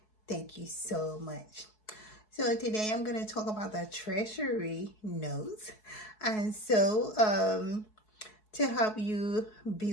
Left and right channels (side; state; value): right; late; 4.7 ms